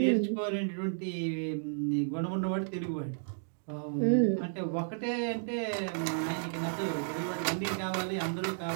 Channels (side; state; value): left; silent; digital silence